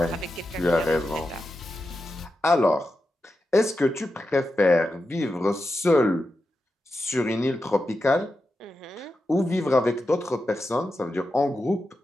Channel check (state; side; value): normal; both; correlation 0.89